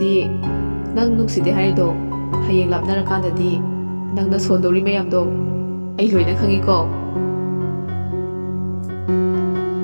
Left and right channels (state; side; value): inverted; both; correlation -1.00